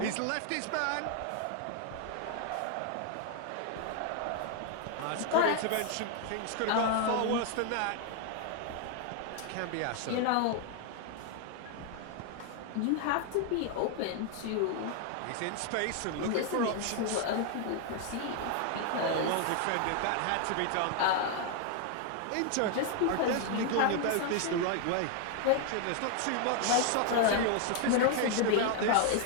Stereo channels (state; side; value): different; both; correlation 0.00